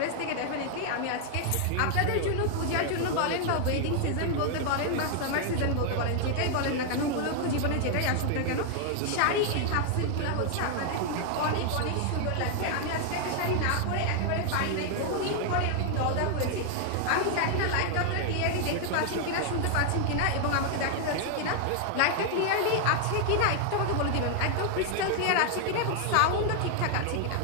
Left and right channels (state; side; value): different; both; correlation 0.00